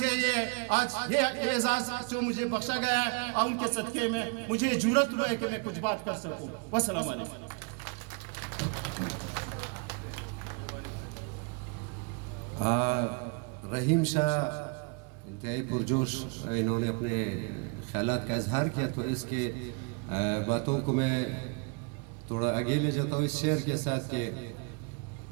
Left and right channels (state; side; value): quieter; left; 35.3 dB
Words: یہ اعزاز جو مجھے بخشا گیا ہے، اور ان کے صدقے میں مجھے جرأت ہوا ہے کہ میں کچھ بات کر سکوں. والسلام علیکم. رحیم شاہ انتہائی پرجوش انہوں نے اپنے خیالات کا اظہار کیا، تو اس کے باتوں کو میں تھوڑا آگے لے جاتا ہوں اس شعر کے ساتھ کہ